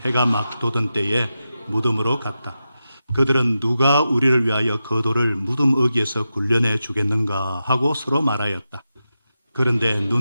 해가 막 돋은 때에 무덤으로 갔다. 그들은 누가 우리를 위하여 그 돌을 무덤 어귀에서 굴려내 주겠는가 하고 서로 말하였다. 그런데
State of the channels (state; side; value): inverted; both; correlation -0.90